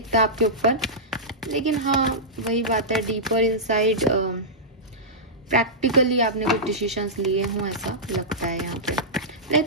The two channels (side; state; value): both; normal; correlation -0.13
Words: आपके ऊपर। लेकिन हाँ, वही बात है, डीपर इनसाइड प्रैक्टिकली आपने कुछ डिसीजंस लिए हों, ऐसा लगता है यहाँ पे।